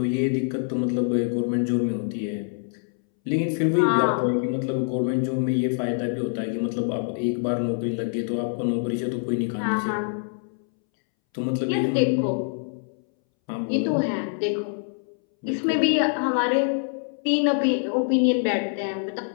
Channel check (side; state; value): right; silent; 62 dB below the other